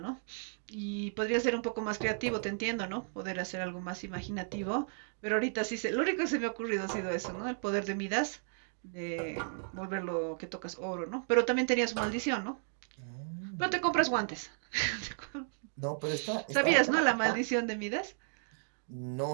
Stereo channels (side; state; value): left; silent; digital silence